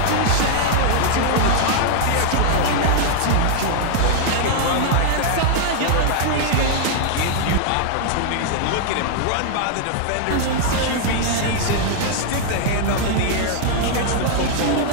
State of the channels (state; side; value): different; both; correlation -0.01